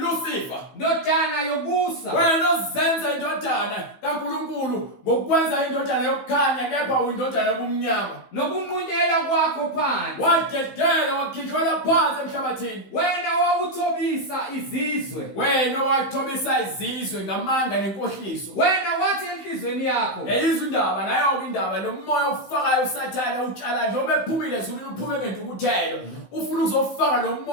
Ndodana yobusa. Wena ozenza indodana kaNkulunkulu ngokwenza indodana yokukhanya kepha uyindodana yobumnyama. Nokunqunyela kwakho phansi. Wadedela wakhithela phansi emhlabathini. Wena wawuthobisa izizwe. Wena wathobisa izizwe ngamanga nenkohliso. Wena wathi enhlizweni yakho. Yeyizwe indaba nayo ke indaba lo moya ofakayo uSathane utshala njengoba ephumile ezulwini uphume ngentukuthelo. Ufuna ukuzofaka lo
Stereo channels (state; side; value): late; right; 15 ms